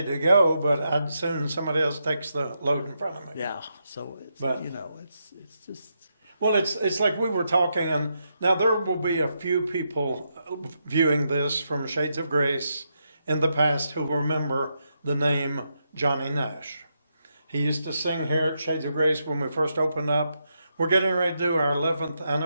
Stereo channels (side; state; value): both; inverted; correlation -0.82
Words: to go, but I'd soon somebody else takes the load in front of me. Yeah, so it's But- it's just Well, it's like we were talking, and now there will be a few people viewing this from Shades of Grace in the past who remember the name Johnny Nash. He used to sing here at Shades of Grace when we first opened up. We're getting ready to do our 11th